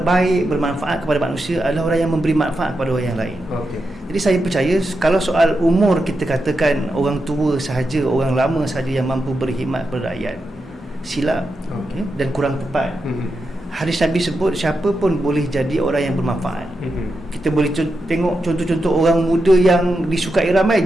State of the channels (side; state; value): both; normal; correlation 0.87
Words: baik bermanfaat kepada manusia adalah orang yang memberi manfaat kepada orang yang lain. Jadi saya percaya kalau soal umur kita katakan orang tua sahaja, orang lama sahaja yang mampu berkhidmat kepada rakyat, silap dan kurang tepat. Hadis Nabi sebut siapa pun boleh jadi orang yang bermanfaat. Kita boleh tengok contoh-contoh orang muda yang disukai ramai.